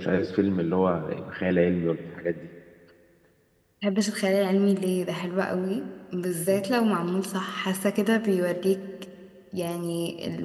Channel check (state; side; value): identical; both; correlation 1.00